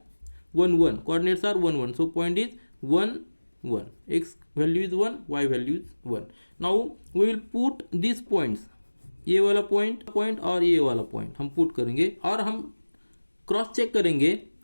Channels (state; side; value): inverted; both; correlation -1.00